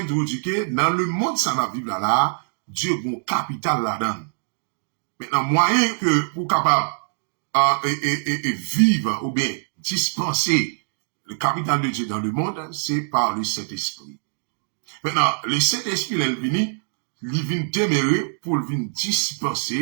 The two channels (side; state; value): left; silent; digital silence